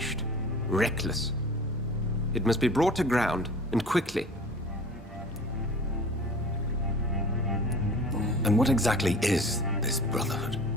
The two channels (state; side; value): normal; both; correlation 0.42